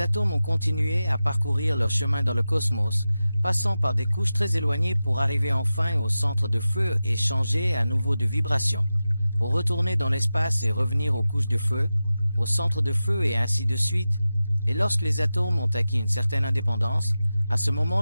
atomes ont continué à parcourir leur chemin dans le cosmos, passant par des couches très éloignées pour arriver enfin au centre de feu et changer à nouveau de vibration, pour retourner dans l'espace et revenir aux couches de feu, au centre de feu et ainsi de suite. Et lorsque les atomes ont acquis une certaine indépendance, à ce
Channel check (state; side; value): inverted; both; correlation -0.93